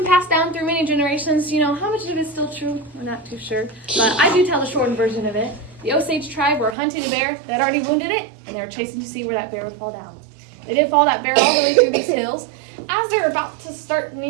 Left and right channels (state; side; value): drops out; left; at 6.8 s